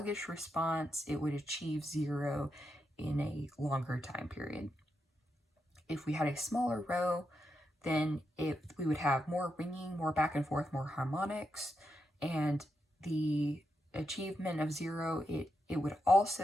response. It would achieve 0 in a longer time period. If we had a smaller rho, then we would have more ringing, more back and forth, more harmonics, and the achievement of 0, it would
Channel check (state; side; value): normal; both; correlation 0.84